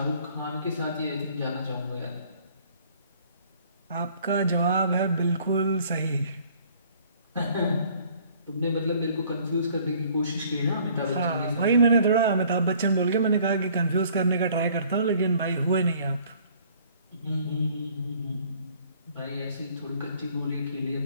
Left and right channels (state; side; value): inverted; both; correlation -0.57